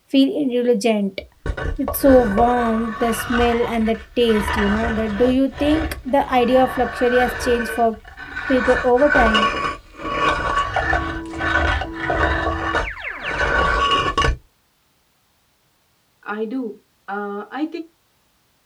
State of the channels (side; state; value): both; identical; correlation 1.00